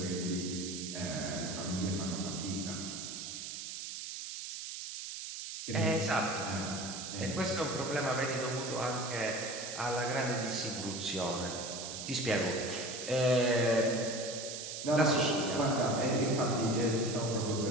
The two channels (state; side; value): noise; right; hiss, 7 dB below the sound